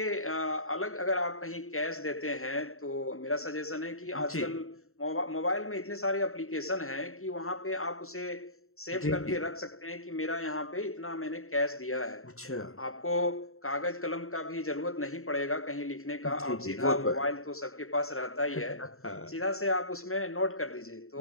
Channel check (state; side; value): late; right; 0.62 ms